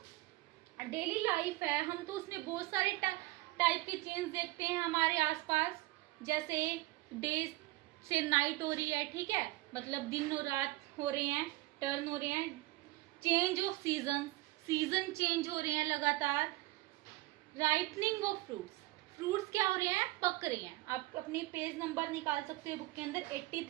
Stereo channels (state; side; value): quieter; left; 20.3 dB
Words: डेली लाइफ है हम तो उसमें बहुत सारे टाइप के चेंज देखते हैं हमारे आसपास। जैसे डे से नाइट हो रही है, ठीक है, मतलब दिन और रात हो रहे हैं, टर्न हो रहे हैं। चेंज ऑफ सीजन चेंज हो रहे हैं लगातार। राइपनिंग ऑफ फ्रूट्स क्या हो रहे हैं? पक रहे हैं। आप अपनी पेज नंबर निकाल सकते हैं बुक के अंदर